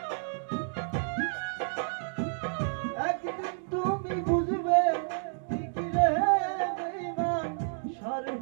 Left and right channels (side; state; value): left; silent; digital silence